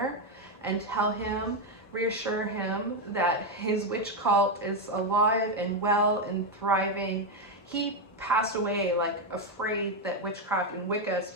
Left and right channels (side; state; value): both; normal; correlation 0.06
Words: and tell him, reassure him that his witch cult is alive and well and thriving. He passed away like afraid that witchcraft and Wicca